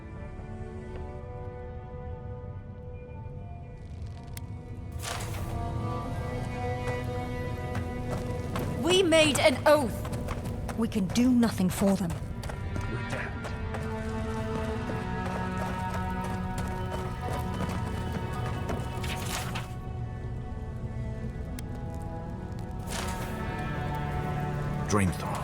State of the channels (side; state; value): both; identical; correlation 1.00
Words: We made an oath. We can do nothing for them. Dream